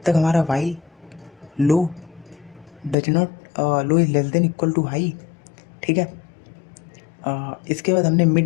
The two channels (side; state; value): right; drops out; at 3.0 s